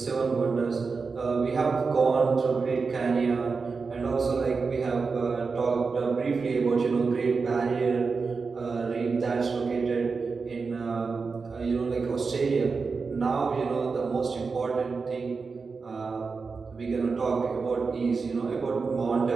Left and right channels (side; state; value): left; quieter; 4.7 dB